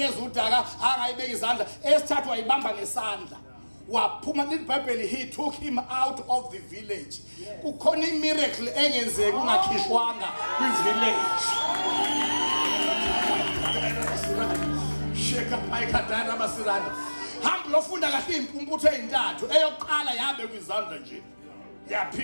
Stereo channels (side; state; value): both; inverted; correlation -1.00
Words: udaka akangayibeka izandla eyesithathu wayibamba ngesandla waphuma liBhayibheli he took him out of the village. Kukhona imiracle engenzeki ungakhishwanga kwi-village. Sheka phayikadana basiranda hamba lofunda kahle impumputho ezintathu eyokuqala yabe kwizandla nje